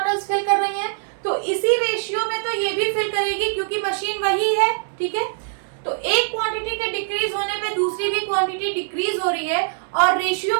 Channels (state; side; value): silent; left; digital silence